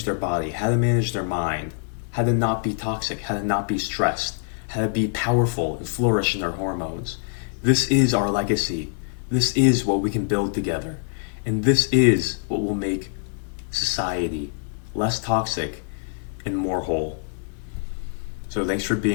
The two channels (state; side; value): silent; right; digital silence